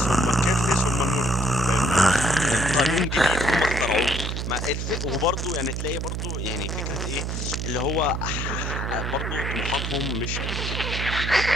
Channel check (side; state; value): right; noise; hum, 3 dB below the sound